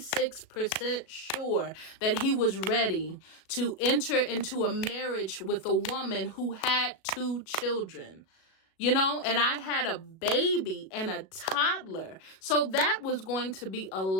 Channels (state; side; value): late; right; 37 ms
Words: sure that he was ready to enter into a marriage with a woman who had 2 children. And I had a baby and a toddler. So that was going to be a